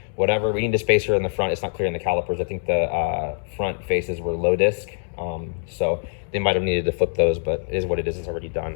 whatever, we need a spacer in the front. It's not clear in the calipers. I think the front faces were low disc, so they might have needed to flip those, but it is what it is. It's already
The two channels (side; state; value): right; silent; digital silence